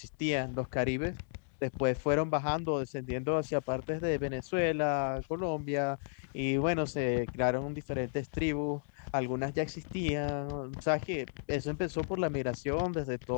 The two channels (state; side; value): silent; right; digital silence